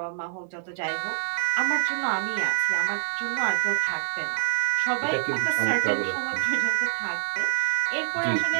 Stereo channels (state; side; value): silent; left; 61 dB below the other